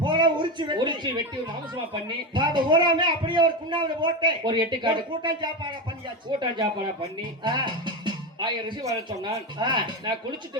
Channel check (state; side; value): normal; both; correlation 0.17